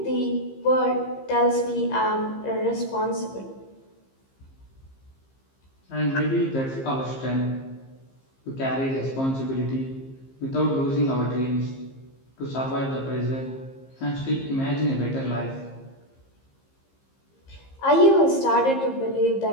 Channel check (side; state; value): right; late; 15 ms